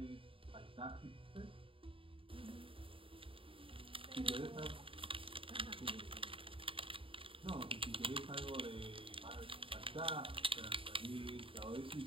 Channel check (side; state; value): left; late; 0.26 ms